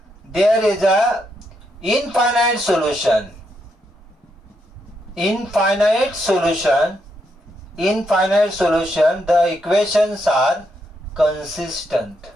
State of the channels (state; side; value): normal; both; correlation 0.79